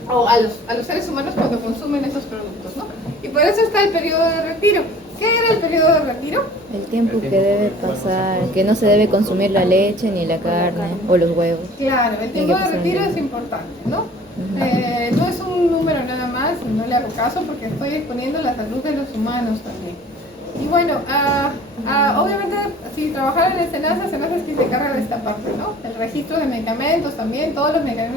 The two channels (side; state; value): both; normal; correlation 0.48